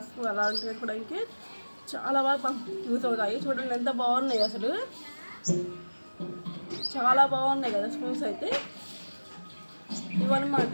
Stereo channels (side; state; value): both; inverted; correlation -1.00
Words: అలాంటివి వేసుకోవడానికి చాలా బాగా యూజ్ అవుతాయి. చూడండి ఎంత బాగున్నాయి అసలు. చాలా బాగున్నాయి కదా స్పూన్స్ అయితే. ఇవన్నమాట.